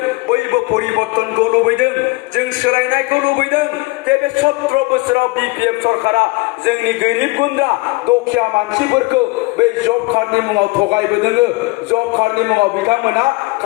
बयबो परिबर्तनखौ लुबैदों जों सोलायनायखौ लुबैदों जे बे 17 बोसोराव बिपिएफ सरकारा जोंनि गोरिब गुन्द्रा दुखिया मानसिफोरखौ बे जब कार्डनि मुङाव थगायबोदों जब कार्डनि मुङाव बिथांमोना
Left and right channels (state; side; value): quieter; right; 23.7 dB